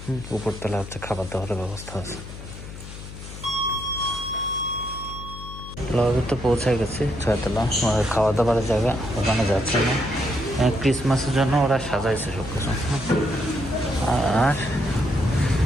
উপর তলা হচ্ছে খাবার দাবারের ব্যবস্থা আছে। লবি তো পৌঁছে গেছি, 6 তলা খাওয়া দাবারের জায়গা, ওখানে যাচ্ছে না। ক্রিসমাসের জন্য ওরা সাজাইছে সব কিছু। আর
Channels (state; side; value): noise; left; hum, 12 dB below the sound